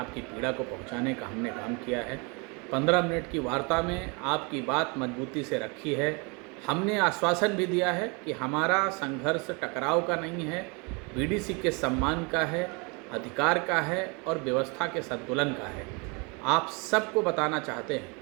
पीड़ा को पहुंचाने का हमने काम किया है। 15 मिनट की वार्ता में आपकी बात मजबूती से रखी है। हमने आश्वासन भी दिया है कि हमारा संघर्ष टकराव का नहीं है, बीडीसी के सम्मान का है, अधिकार का है और व्यवस्था के संतुलन का है। आप सबको बताना चाहते हैं,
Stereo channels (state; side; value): quieter; left; 30.6 dB